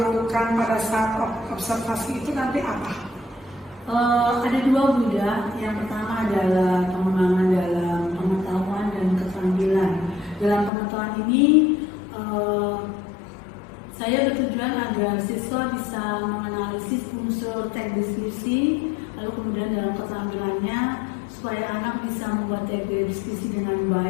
pada saat observasi itu nanti apa? Ada dua Buddha. Yang pertama adalah pengembangan dalam pengetahuan dan keterampilan. Dalam pengetahuan ini saya bertujuan agar siswa bisa menganalisis unsur teks deskripsi, lalu kemudian dalam keterampilannya supaya anak bisa membuat teks deskripsi dengan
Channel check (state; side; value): drops out; right; at 10.7 s